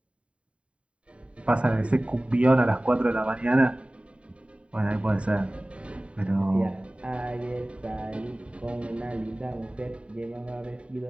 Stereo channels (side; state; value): left; late; 0.061 ms